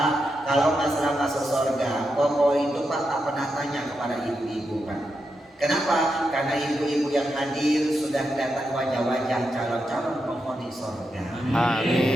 kalau masalah masuk surga, pokok itu Pak tak pernah tanya kepada ibu-ibu Pak. Kenapa? Karena ibu-ibu yang hadir sudah kelihatan wajah-wajah calon-calon penghuni surga.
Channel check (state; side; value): normal; both; correlation 0.86